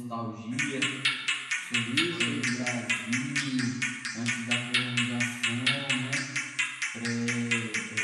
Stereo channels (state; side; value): identical; both; correlation 1.00